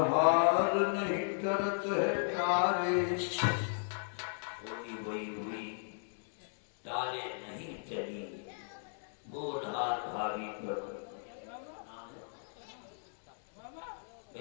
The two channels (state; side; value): silent; right; digital silence